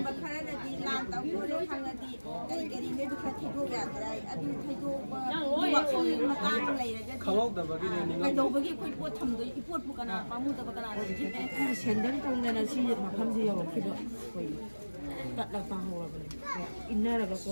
ꯈꯔꯅꯗꯤ ꯂꯥꯟ ꯇꯧꯈꯤꯕ ꯈꯪꯉꯗꯤ ꯀꯔꯤ ꯀꯔꯤ ꯅꯣꯏꯗꯨ ꯈꯔ ꯊꯩꯗꯣꯛ ꯌꯥꯗ꯭ꯔꯥ ꯑꯗꯨ ꯊꯩꯗꯣꯛꯄꯒꯤ ꯋꯥꯈꯜ ꯃꯇꯥꯡ ꯂꯩꯔꯒꯗꯤ ꯀꯩꯗꯧꯕꯒꯤ ꯑꯩꯈꯣꯏ ꯄꯣꯠ ꯊꯝꯗꯣꯏ ꯄꯣꯠꯄꯨ ꯀꯅꯥ ꯄꯥꯝꯃꯨꯗꯕ ꯀꯅꯥꯅ ꯅꯤꯡꯁꯤꯡꯗꯣꯏꯅꯣ Sendal tongdana si makamsi yawakkiba. Tatla pahawabani. Innaraga ko.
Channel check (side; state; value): both; inverted; correlation -1.00